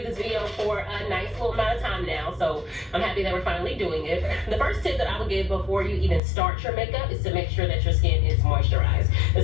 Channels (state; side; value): drops out; right; at 6.2 s